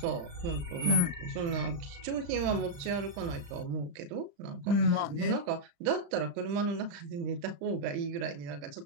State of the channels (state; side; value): late; left; 35 ms